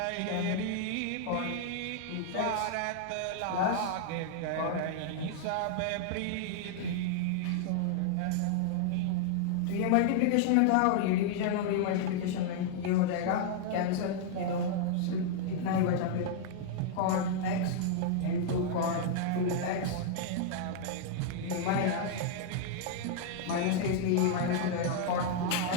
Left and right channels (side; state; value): both; different; correlation -0.01